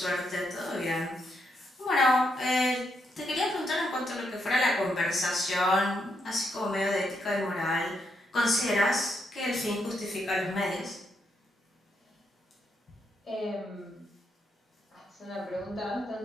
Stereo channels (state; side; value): normal; both; correlation 0.79